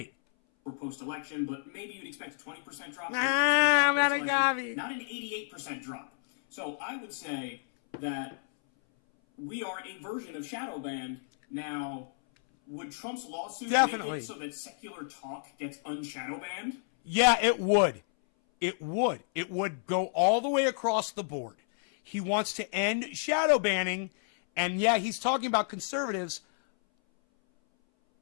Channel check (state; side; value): silent; right; 57 dB below the other